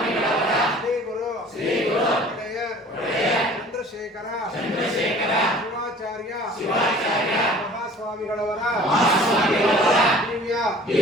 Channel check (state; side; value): normal; both; correlation 0.48